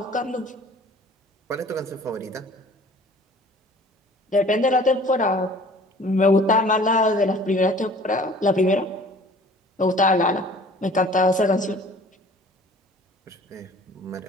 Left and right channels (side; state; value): both; normal; correlation 0.49